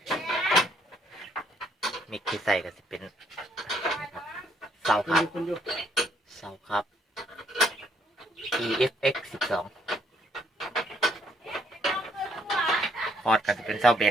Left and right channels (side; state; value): both; normal; correlation 0.69